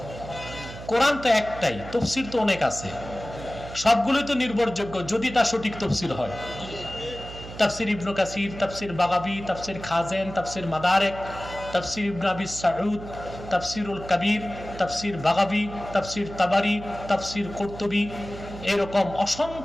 কোরআন তো একটাই, তাফসীর তো অনেক আছে, সবগুলোই তো নির্ভরযোগ্য যদি তা সঠিক তাফসীর হয়। তাফসীর ইবনে কাসির, তাফসীর বাগাবী, তাফসীর খাজেন, তাফসীর মাদারিক, তাফসীর ইবনে আবি সাউদ, তাফসীরুল কবির, তাফসীর বাগাবী, তাফসীর তাবারি, তাফসীর কুরতুবী, এরকম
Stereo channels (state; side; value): noise; right; hum, 13 dB below the sound